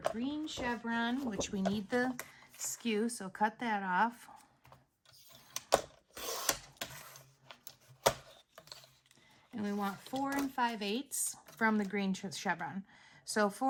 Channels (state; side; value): identical; both; correlation 1.00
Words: green chevron, which we need the skew, so cut that off. And we want 4 5/8 from the green chevron. So